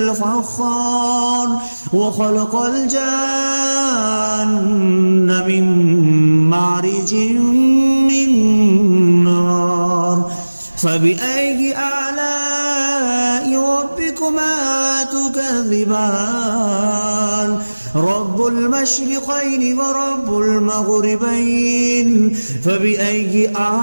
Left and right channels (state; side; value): inverted; both; correlation -1.00